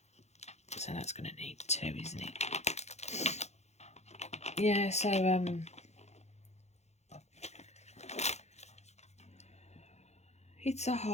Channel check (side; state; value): right; late; 0.32 ms